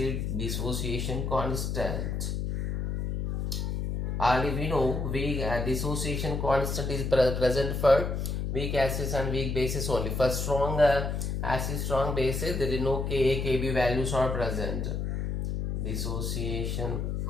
dissociation constant. Already we know weak dissociation constant is present for weak acids and weak bases only. For strong acid, strong bases, there is no Ka, Kb values are present. Dissociation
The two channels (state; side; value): noise; left; hum, 2 dB below the sound